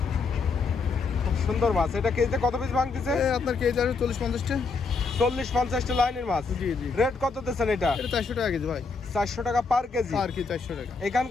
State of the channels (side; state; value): right; quieter; 4.5 dB